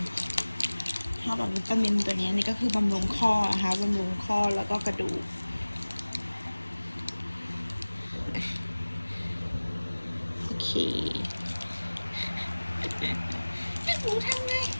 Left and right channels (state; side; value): inverted; both; correlation -1.00